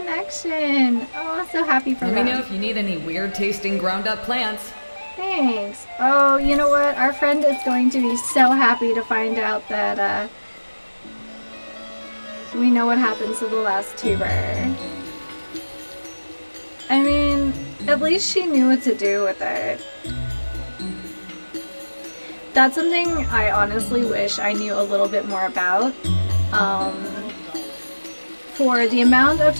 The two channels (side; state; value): both; inverted; correlation -1.00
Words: Oh, I'm so happy for Let them. me know if you need any weird tasting ground up plants. Thanks. Oh, you know what? Our friend is going to be so happy to find out that we know what happens to the last tuber. I mean, at least she knew what to do with it. That's something I honestly wish I knew a little bit more about. For the amount of